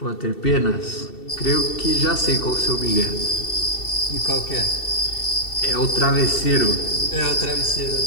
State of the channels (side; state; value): right; late; 2.7 ms